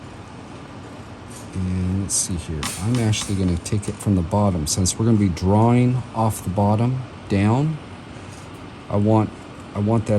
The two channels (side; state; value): both; identical; correlation 1.00